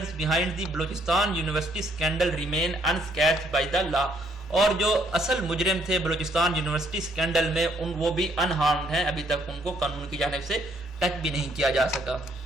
behind the Balochistan University scandal remain unscathed by the law. اور جو اصل مجرم تھے بلوچستان یونیورسٹی اسکینڈل میں وہ بھی انہارمڈ ہیں، ابھی تک ان کو قانون کی جانب سے ٹچ بھی نہیں کیا جا سکا.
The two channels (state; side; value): normal; both; correlation 0.68